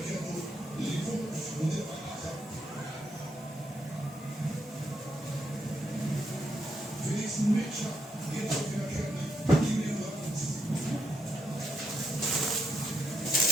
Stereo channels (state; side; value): normal; both; correlation 0.79